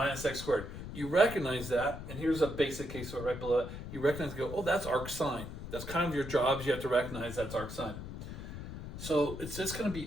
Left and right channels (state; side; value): noise; left; rumble, 9 dB below the sound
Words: x squared. You recognize that, and here's a basic case right below it. You recognize, go, oh, that's arc sine. That's kind of your jobs. You have to recognize that's arc sine. So it's just going to